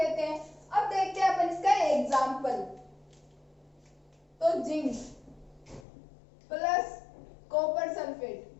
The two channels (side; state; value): right; drops out; at 5.8 s